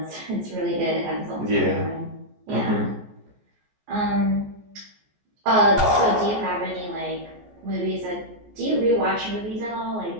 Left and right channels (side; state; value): left; late; 14 ms